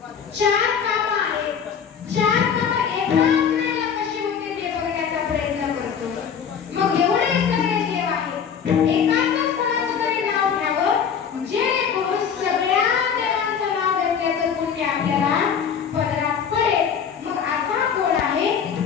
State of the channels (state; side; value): quieter; right; 7.3 dB